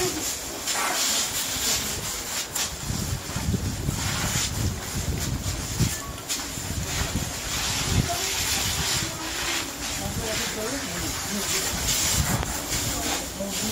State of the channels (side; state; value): both; identical; correlation 1.00